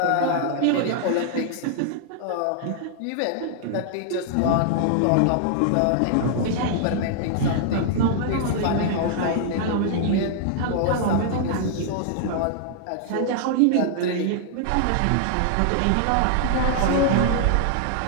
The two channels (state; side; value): different; both; correlation -0.01